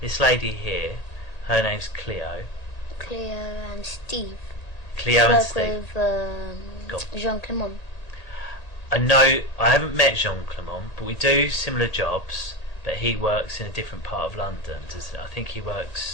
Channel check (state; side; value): late; right; 1.8 ms